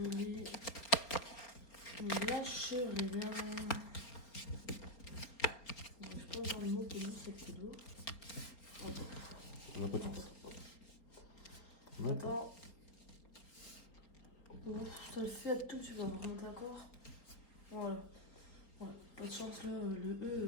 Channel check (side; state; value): right; late; 4.3 ms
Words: lit. Lâche rien. Je pense dans le mot que nous, c'est cadeau. On n'a pas de chance. Non. Attends. Bon, ça le fait à tout, tu vas me rendre d'accord. Voilà. Ouais, pas de chance là, le